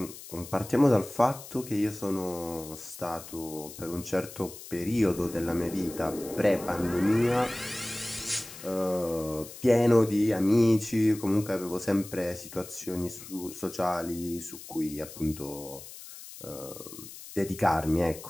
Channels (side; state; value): left; noise; hiss, 15 dB below the sound